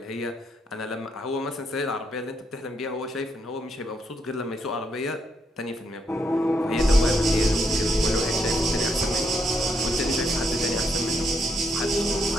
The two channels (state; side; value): normal; both; correlation 0.76